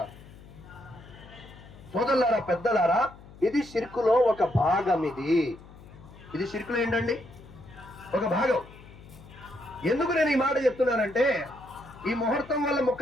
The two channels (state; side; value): noise; left; hum, 20 dB below the sound